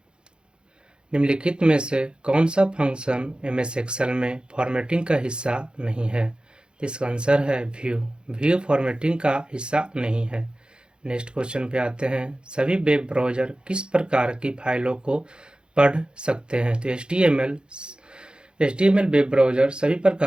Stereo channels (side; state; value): left; late; 0.051 ms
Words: निम्नलिखित में से कौन सा फंक्शन MS एक्सेल में फॉर्मेटिंग का हिस्सा नहीं है? इसका आंसर है व्यू फॉर्मेटिंग का हिस्सा नहीं है। नेक्स्ट क्वेश्चन पे आते हैं, सभी वेब ब्राउज़र किस प्रकार की फाइलों को पढ़ सकते हैं? तो HTML वेब ब्राउज़र सभी